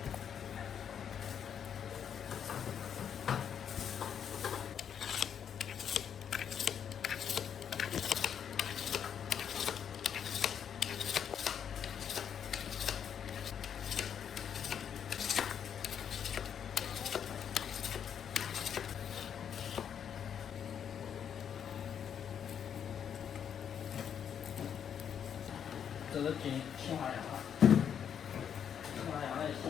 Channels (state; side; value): quieter; right; 8.3 dB